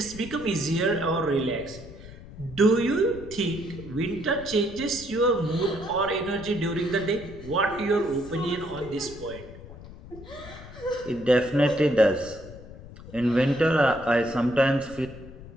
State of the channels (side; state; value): left; noise; rumble, 16 dB below the sound